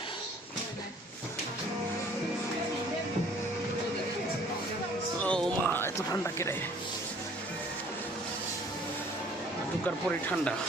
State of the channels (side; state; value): both; normal; correlation 0.55